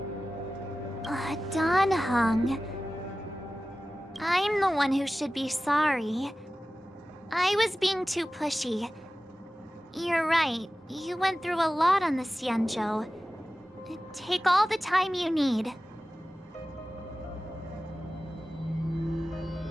Don Hung. I'm the one who should be sorry. I was being too pushy. You're right. You went through a lot on the Xianzhou. Take all the time you need.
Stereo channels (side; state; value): both; normal; correlation 0.95